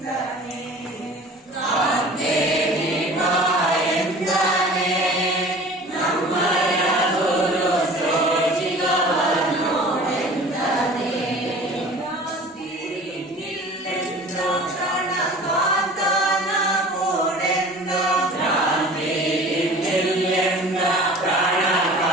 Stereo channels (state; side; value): normal; both; correlation 0.43